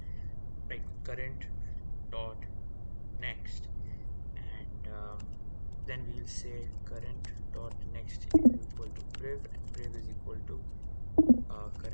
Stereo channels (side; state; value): both; inverted; correlation -1.00